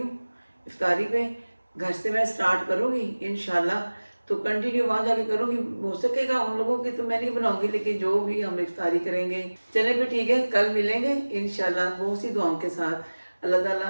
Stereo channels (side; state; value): both; inverted; correlation -1.00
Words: इफ्तारी पे, घर से मैं स्टार्ट करूँगी इंशाल्लाह, तो कंटिन्यू वहाँ जाके करूँगी। हो सकेगा उन लोगों की तो मैं नहीं बनाऊँगी, लेकिन जो भी हम इफ्तारी करेंगे। चले फिर ठीक है, कल मिलेंगे इंशाल्लाह बहुत सी दुआओं के साथ। अल्लाह ताला